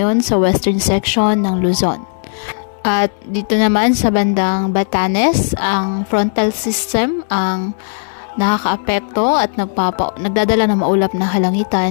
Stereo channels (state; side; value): silent; right; digital silence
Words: sa western section ng Luzon. At dito naman sa bandang Batanes, ang frontal system ang nakakaapekto at nagdadala ng maulap na